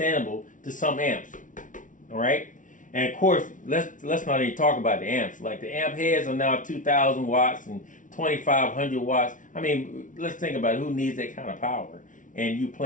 to some amps. All right? And of course, let's not even talk about the amps. Like the amp heads are now 2,000 watts and 2,500 watts. I mean, let's think about it. Who needs that kind of power? And you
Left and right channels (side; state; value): right; late; 0.38 ms